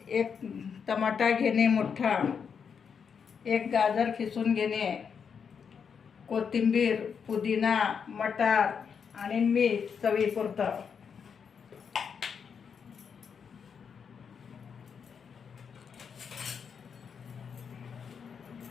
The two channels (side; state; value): right; quieter; 6.6 dB